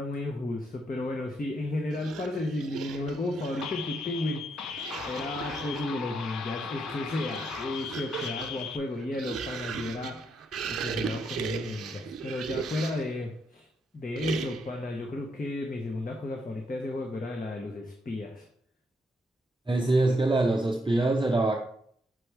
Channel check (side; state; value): both; normal; correlation 0.77